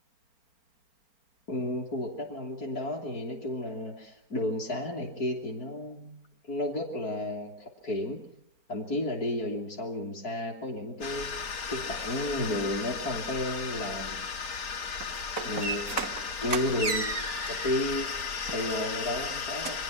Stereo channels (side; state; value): right; late; 4.4 ms